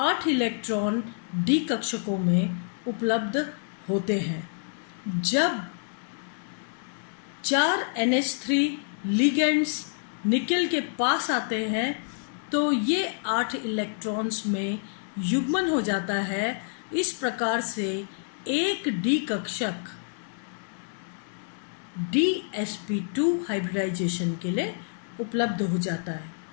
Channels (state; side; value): silent; right; digital silence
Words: इलेक्ट्रॉन डी कक्षकों में उपलब्ध होते हैं। जब 4 NH3 लिगेंड्स निकिल के पास आते हैं तो ये 8 इलेक्ट्रॉन्स में युग्मन हो जाता है। इस प्रकार से एक डी कक्षक DsP2 हाइब्रिडाइजेशन के लिए उपलब्ध हो जाता है।